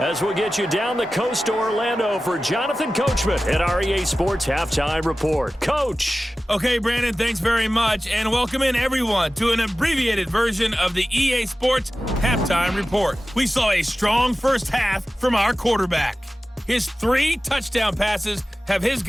we'll get you down the coast to Orlando for Jonathan Coachman at our EA Sports Halftime Report. Coach. Okay, Brandon, thanks very much. And welcome in, everyone, to an abbreviated version of the EA Sports Halftime Report. We saw a strong first half from our quarterback. His 3 touchdown passes have his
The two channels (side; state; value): both; normal; correlation 0.95